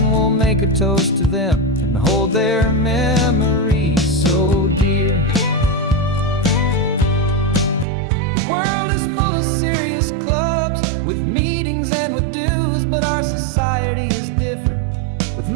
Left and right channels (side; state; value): left; drops out; at 7.9 s